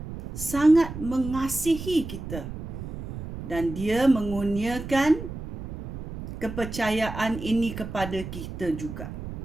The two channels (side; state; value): right; noise; rumble, 9 dB below the sound